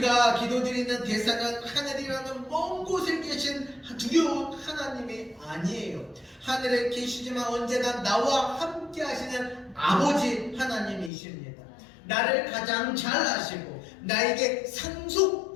기도드리는 대상은 하늘이라는 먼 곳에 계신 두려운 하나님이 아니에요. 하늘에 계시지만 언제나 나와 함께 하시는 아버지 하나님이십니다. 나를 가장 잘 아시고 나에게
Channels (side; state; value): right; drops out; at 11.1 s